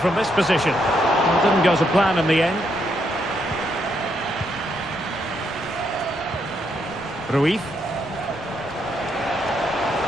this position? Well, it didn't go to plan in the end. Ruiz.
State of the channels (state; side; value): noise; left; rumble, 22 dB below the sound